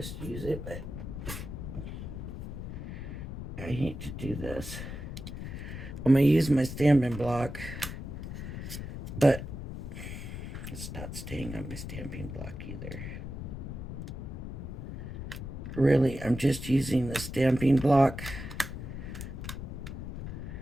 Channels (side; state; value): left; noise; rumble, 7 dB below the sound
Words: use it, but I hate to do this. I'm going to use my stamping block, but it's not staying on my stamping block either. Really, I'm just using the stamping block